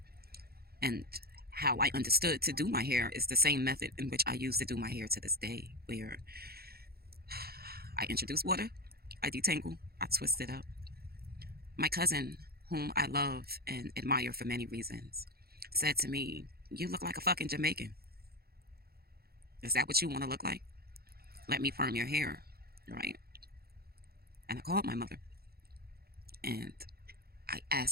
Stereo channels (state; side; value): late; left; 0.45 ms